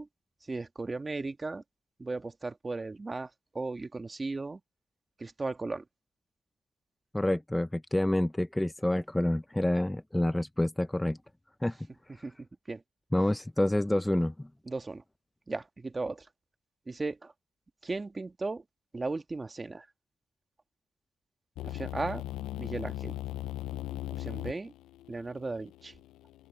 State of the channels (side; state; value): both; normal; correlation 0.95